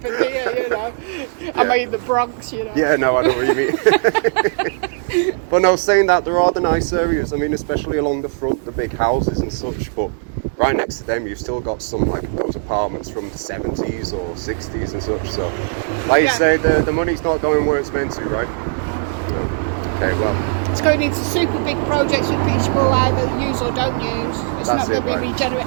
here? You know, am I in the Bronx? You know. Yeah, no, I know what you mean. But no, saying that, there are the nice areas. I mean, especially along the front, the big houses and such. But right next to them, you've still got some like those apartments from the 70s or 60s and such. So, like you say, the money's not going where it's meant to, right? No. Okay, well. It's going into super big projects which will either use or don't use. It's not going to be regenerate.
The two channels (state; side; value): silent; left; 67 dB below the other